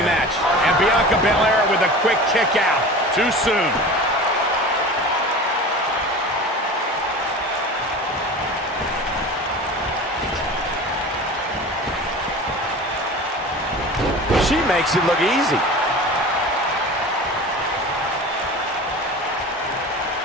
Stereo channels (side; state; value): both; normal; correlation 0.35